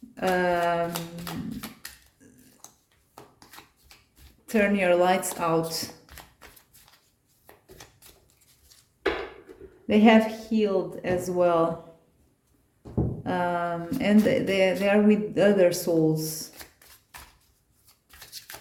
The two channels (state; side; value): identical; both; correlation 1.00